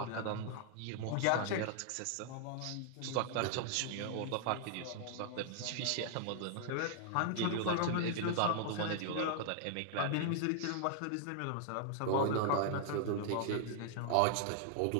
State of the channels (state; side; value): different; both; correlation -0.01